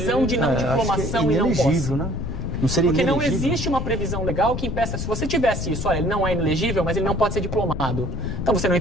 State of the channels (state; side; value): noise; left; rumble, 4 dB below the sound